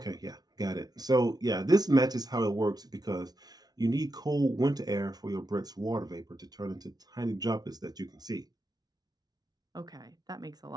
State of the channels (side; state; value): left; late; 0.19 ms